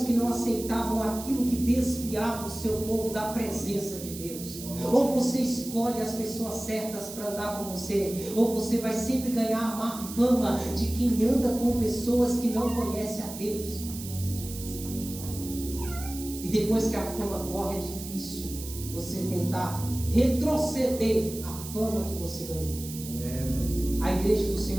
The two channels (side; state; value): right; noise; hiss, 11 dB below the sound